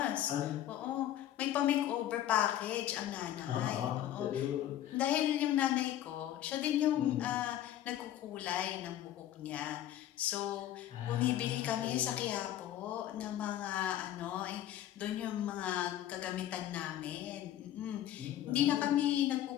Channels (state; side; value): quieter; right; 12.3 dB